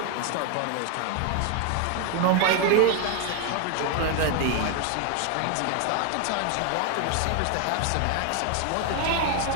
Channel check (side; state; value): both; different; correlation 0.01